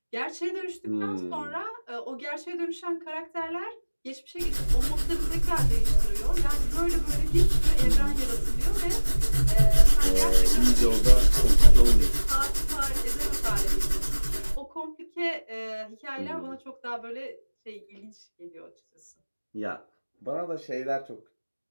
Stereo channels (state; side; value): inverted; both; correlation -1.00